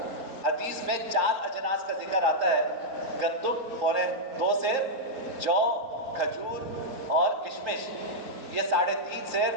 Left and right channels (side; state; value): left; late; 3.8 ms